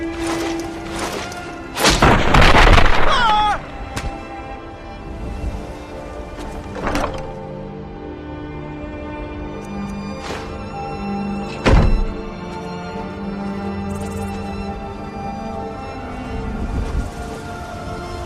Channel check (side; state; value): both; identical; correlation 1.00